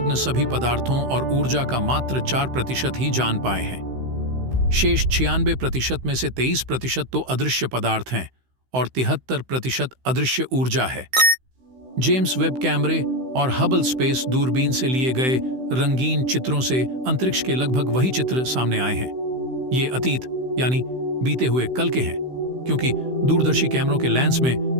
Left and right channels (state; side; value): late; left; 16 ms